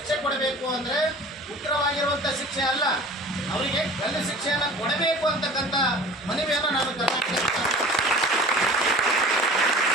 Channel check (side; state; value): both; normal; correlation 0.42